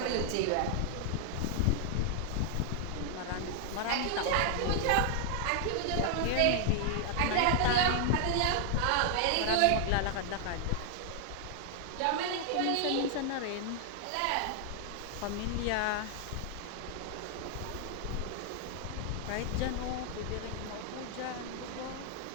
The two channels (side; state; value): both; different; correlation 0.00